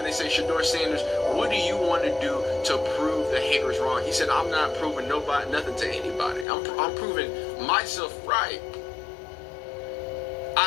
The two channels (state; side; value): drops out; right; at 6.5 s